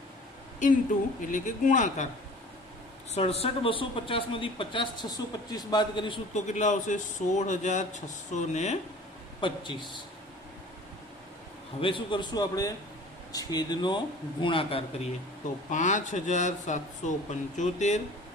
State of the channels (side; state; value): both; normal; correlation 0.45